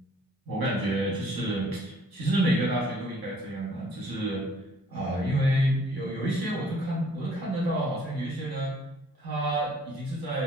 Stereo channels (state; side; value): normal; both; correlation 0.58